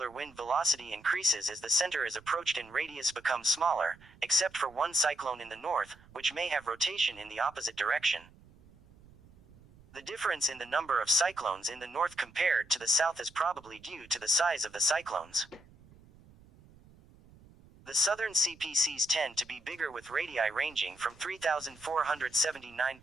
wind velocity increases as the center is approached and radius becomes smaller, except for one cyclone in the north, which may have rotation in the opposite direction. The difference in the number of cyclones in the north compared to the south is probably due to the size of the cyclones. The southern CPCs tend to be bigger, with radii ranging from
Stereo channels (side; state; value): right; noise; rumble, 25 dB below the sound